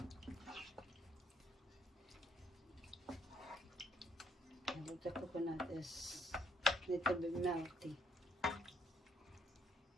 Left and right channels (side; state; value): both; normal; correlation 0.69